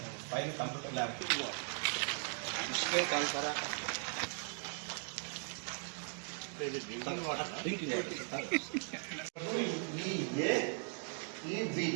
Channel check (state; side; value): silent; left; 52 dB below the other